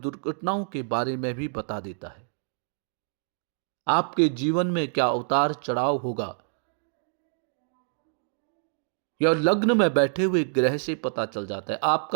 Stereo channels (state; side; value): silent; left; digital silence